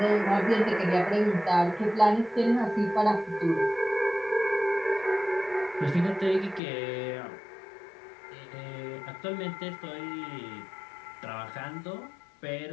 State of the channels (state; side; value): drops out; right; at 6.6 s